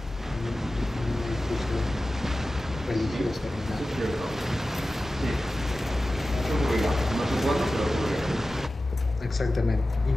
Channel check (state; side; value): normal; both; correlation 0.95